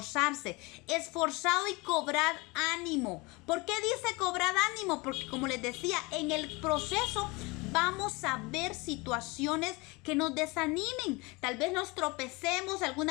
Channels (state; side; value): quieter; right; 25.7 dB